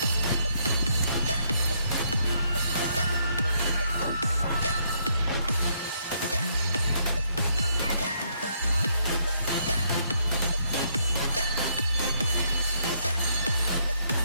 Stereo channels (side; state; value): both; inverted; correlation -0.72